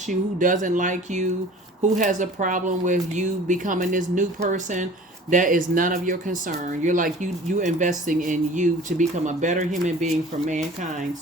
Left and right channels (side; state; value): both; normal; correlation 0.45